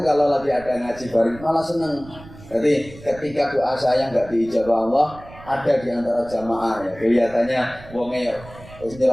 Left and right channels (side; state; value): right; noise; rumble, 19 dB below the sound